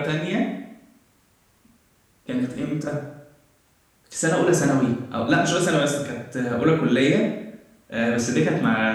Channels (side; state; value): both; identical; correlation 1.00